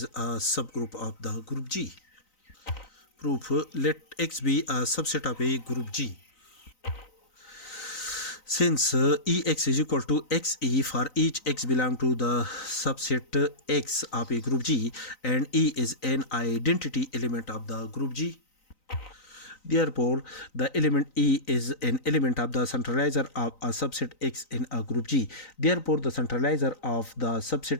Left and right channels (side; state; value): right; late; 3.9 ms